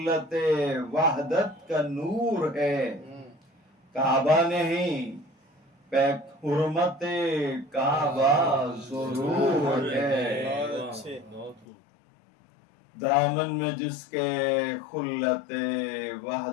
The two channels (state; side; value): drops out; right; at 11.7 s